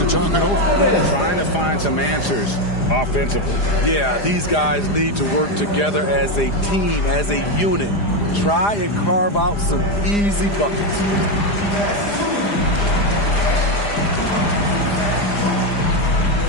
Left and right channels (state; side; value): late; right; 4.9 ms